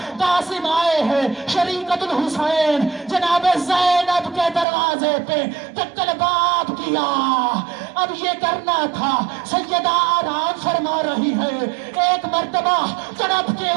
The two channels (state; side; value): drops out; left; at 4.7 s